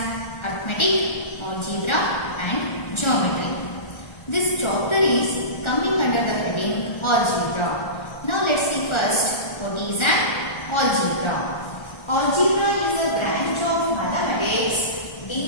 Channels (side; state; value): right; late; 1.4 ms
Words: arithmetic, algebra and geometry. This chapter is coming under the heading algebra. Now let's see first what is an algebra. Algebra is a branch of mathematics